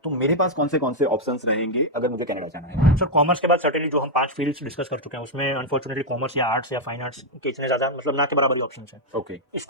तो मेरे पास कौन से ऑप्शंस रहेंगे अगर मुझे कनाडा जाना है? सर कॉमर्स के बाद सर्टेनली जो हम 5 फील्ड्स डिस्कस कर चुके हैं, उसमें अनफॉर्चुनेटली कॉमर्स या आर्ट्स या फाइन आर्ट्स के इतने ज़्यादा मतलब ना के बराबर ही ऑप्शंस हैं. ओके,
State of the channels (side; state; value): both; normal; correlation -0.01